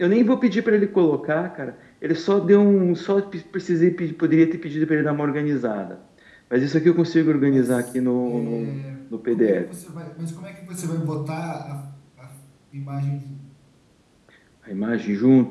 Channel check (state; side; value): identical; both; correlation 1.00